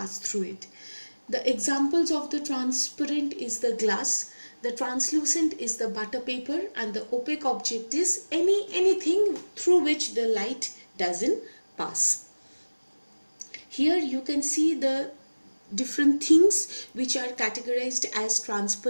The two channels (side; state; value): both; inverted; correlation -1.00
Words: through it. The examples of the transparent is the glass, the translucent is the butter paper, and the opaque object is anything through which the light doesn't pass. Here you can see the different things which are categorized as